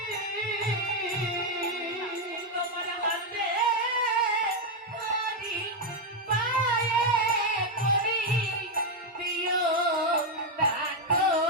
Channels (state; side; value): normal; both; correlation 0.02